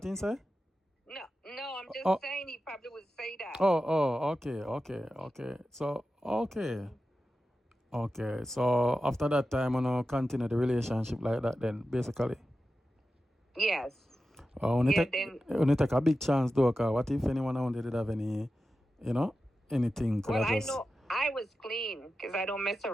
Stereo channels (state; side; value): normal; both; correlation 0.92